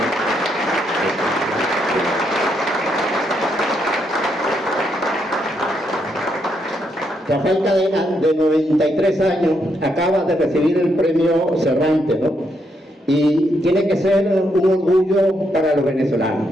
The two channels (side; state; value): both; normal; correlation 0.78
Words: Rafael Cadena, de 93 años, acaba de recibir el premio Cervantes, ¿no? Y tiene que ser un orgullo para los venezolanos.